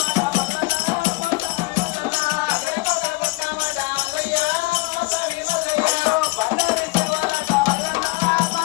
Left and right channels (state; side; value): quieter; right; 24.3 dB